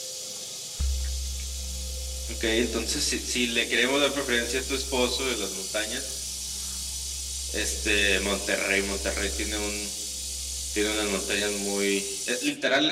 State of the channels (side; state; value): both; identical; correlation 1.00